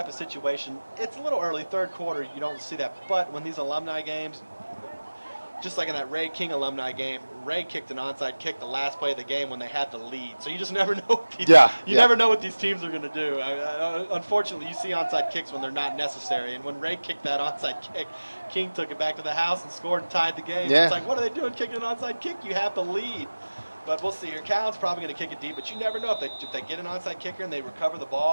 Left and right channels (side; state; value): both; inverted; correlation -1.00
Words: of situation, it's a little early, third quarter. You don't see that. But when these alumni games, just like in that Ray King alumni game, Ray kicked an onside kick the last play of the game when they had the lead. So you just never know. Never know what these teams are going to do. Unfortunately, you see onside kicks when they're not necessary. And when Ray kicked that onside kick, King took it back to the house and scored and tied the game. Yeah. It's like, what are they doing kicking an onside kick? You have the lead. But we'll see here. Callan's probably going to kick it deep, but you never know if they get an onside kicker and they recover the